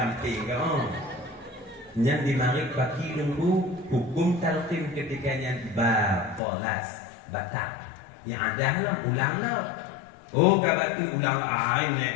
kau. Yang dimarik bagi nunggu hukum talqin ketikanya balas batal. Yang ada lah ulang lah. Oh kata tu ulang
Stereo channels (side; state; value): right; drops out; at 6.4 s